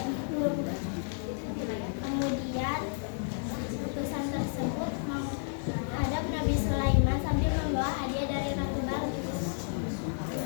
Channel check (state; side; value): silent; right; 57 dB below the other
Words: itu. Kemudian utusan tersebut menghadap Nabi Sulaiman sambil membawa hadiah dari Ratu Balkis.